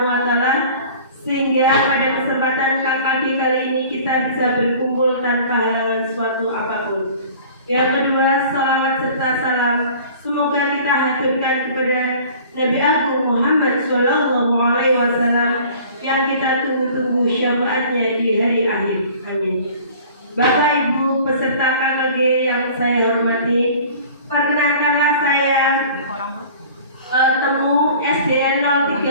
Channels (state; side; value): inverted; both; correlation -0.46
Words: wa taala sehingga pada kesempatan KKG kali ini kita bisa berkumpul tanpa halangan suatu apapun. Yang kedua, salawat serta salam semoga kita haturkan kepada Nabi Agung Muhammad Shallallahu Alaihi Wasallam yang kita tunggu-tunggu syafaatnya di hari akhir. Amin. Bapak Ibu peserta KKG yang saya hormati, perkenankanlah saya Temu SDN